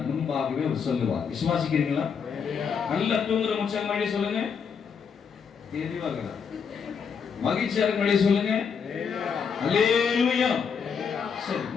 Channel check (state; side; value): quieter; right; 6.4 dB